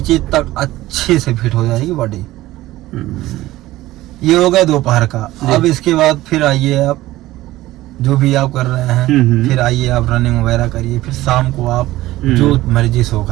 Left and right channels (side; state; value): left; quieter; 16.6 dB